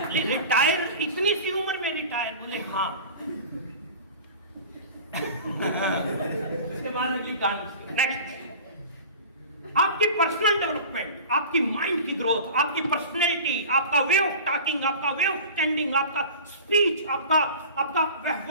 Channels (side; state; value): both; inverted; correlation -0.37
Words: रिटायर इतनी सी उम्र में रिटायर? बोले हाँ। उसके बाद अगली कहानी। नेक्स्ट, आपकी पर्सनल डेवलपमेंट, आपकी माइंड की ग्रोथ, आपकी पर्सनैलिटी, आपका वे ऑफ टॉकिंग, आपका वे ऑफ स्टैंडिंग, आपका स्पीच, आपका